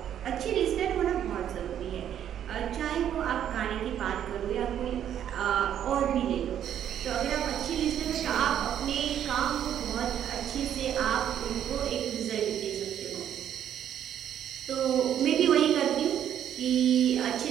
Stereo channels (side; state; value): left; quieter; 10.0 dB